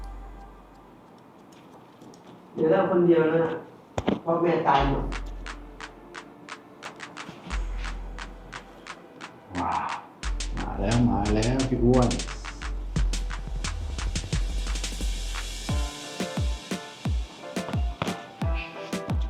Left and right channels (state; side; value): identical; both; correlation 1.00